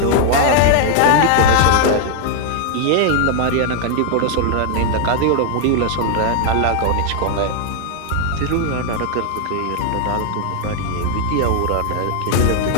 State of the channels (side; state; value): both; different; correlation 0.00